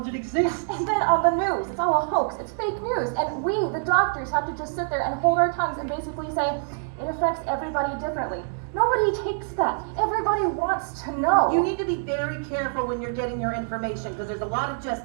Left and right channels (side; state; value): left; silent; digital silence